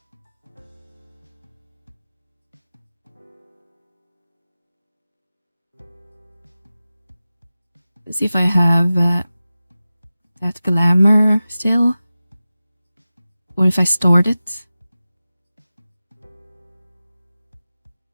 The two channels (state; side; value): inverted; both; correlation -0.95